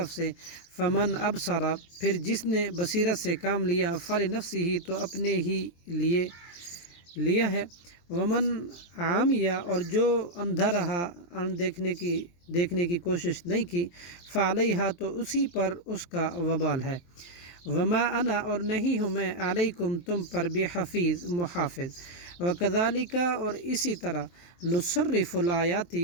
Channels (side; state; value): right; late; 23 ms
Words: سے فمن ابصر پھر جس نے بصیرت سے کام لیا فلنفسہ تو اپنے ہی لیے لیا ہے ومن عامیہ اور جو اندھا رہا دیکھنے کی کوشش نہیں کی فعلیہا تو اسی پر اس کا وبال ہے وما انا اور نہیں ہوں میں علیکم تم پر بحفیظ محافظ وکذالک اور اسی طرح نصرف